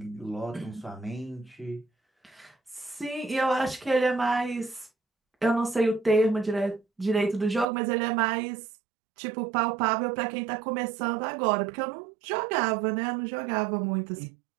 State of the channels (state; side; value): drops out; left; at 7.7 s